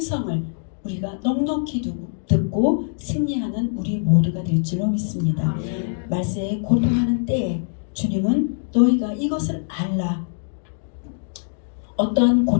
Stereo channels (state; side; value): silent; right; digital silence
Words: 우리가 넉넉히 듣고 승리하는 우리 모두가 될 줄로 믿습니다. 말세에 고통하는 때에 주님은 너희가 이것을 알라. 어떠한